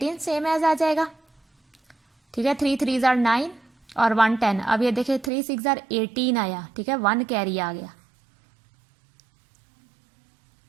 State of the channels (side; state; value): left; drops out; at 5.3 s